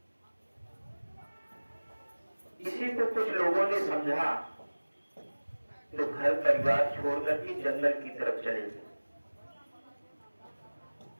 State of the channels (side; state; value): both; inverted; correlation -1.00